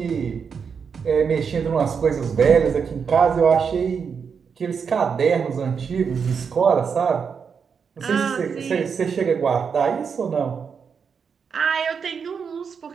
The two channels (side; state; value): left; quieter; 6.3 dB